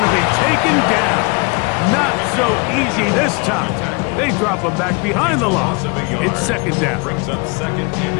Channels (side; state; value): right; quieter; 30.1 dB